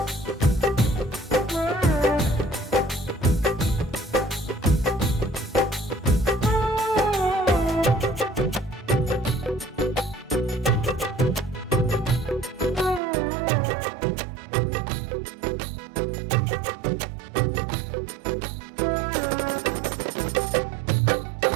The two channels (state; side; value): drops out; left; at 13.0 s